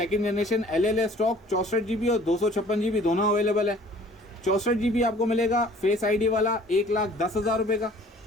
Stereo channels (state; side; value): normal; both; correlation 0.52